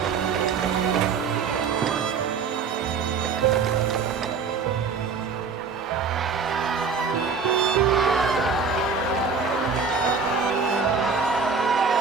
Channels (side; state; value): left; quieter; 5.3 dB